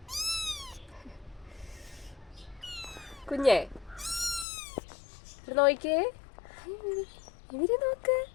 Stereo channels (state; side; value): drops out; right; at 4.5 s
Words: കുഞ്ഞേ നോക്കിയേ, ഇവര് നോക്ക്.